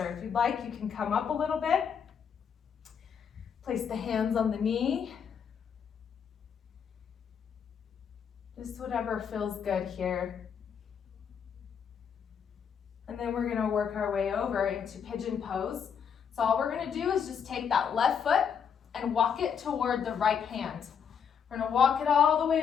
If you'd like, you can come up a little bit. Place the hands on the knee. Just whatever feels good here. And then we're going to work our way over into Pigeon Pose. So all we're going to do is just take that left foot and walk it toward the right hand. We're going to walk it all the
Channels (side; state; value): right; quieter; 7.3 dB